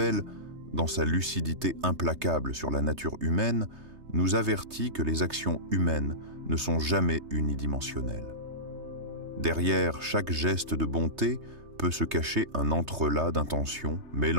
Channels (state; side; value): late; left; 3.3 ms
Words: dans sa lucidité implacable sur la nature humaine, nous avertit que les actions humaines ne sont jamais unidimensionnelles. Derrière chaque geste de bonté peut se cacher un entrelac d'intentions